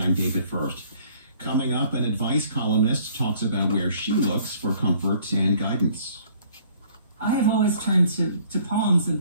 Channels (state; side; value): inverted; both; correlation -0.58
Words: I'm David First. Coming up, an advice columnist talks about where she looks for comfort and guidance. I have always turned to poems